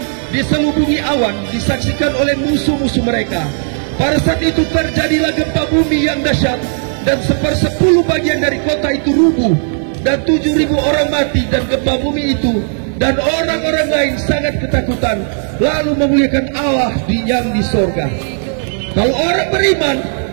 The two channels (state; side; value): silent; left; digital silence